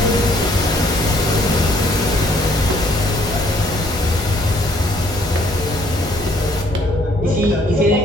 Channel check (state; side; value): normal; both; correlation 0.64